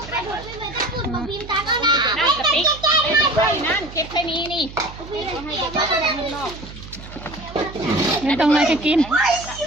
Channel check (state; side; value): noise; right; hum, 15 dB below the sound